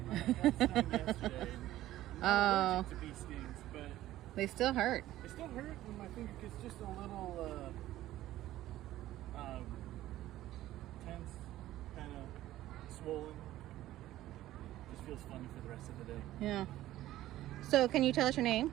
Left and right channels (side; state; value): left; quieter; 14.6 dB